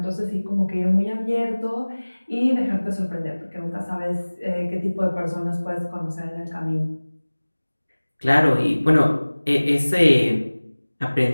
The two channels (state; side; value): inverted; both; correlation -1.00